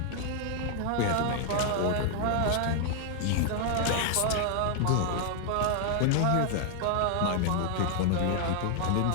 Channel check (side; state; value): both; different; correlation 0.00